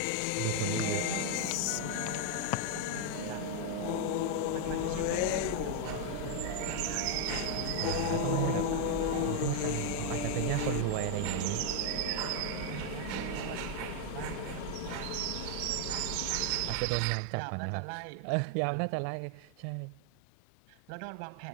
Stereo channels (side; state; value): both; different; correlation 0.00